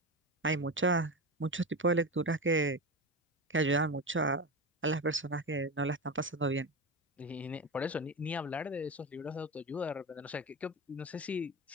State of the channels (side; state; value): both; normal; correlation 0.21